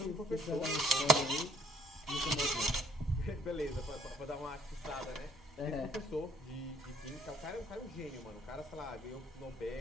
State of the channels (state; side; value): normal; both; correlation 0.62